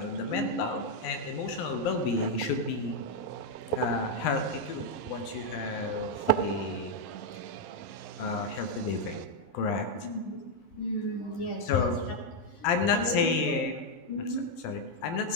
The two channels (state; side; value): late; right; 12 ms